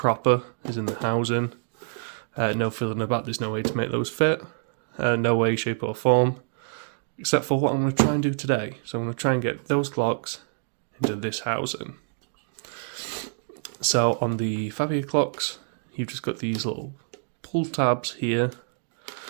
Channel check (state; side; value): silent; left; digital silence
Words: as in the housing. No fiddling about, there's no way to make those fit. No way, shape or form. Except for what I'm going to try and do today. So I'm going to try and get those clocks into this housing. So on the Fabia clocks, you've just got these little pull tabs here.